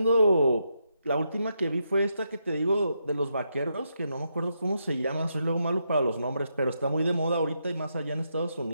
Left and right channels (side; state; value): both; inverted; correlation -0.82